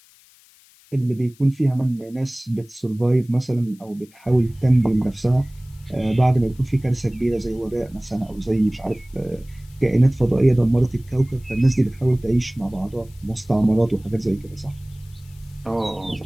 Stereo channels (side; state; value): left; noise; hiss, 28 dB below the sound